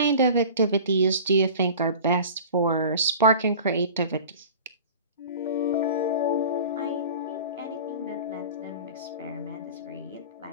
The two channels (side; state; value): both; inverted; correlation -0.40